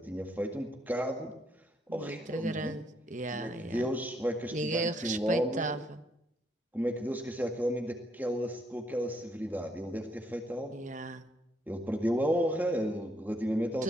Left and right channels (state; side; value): normal; both; correlation 0.72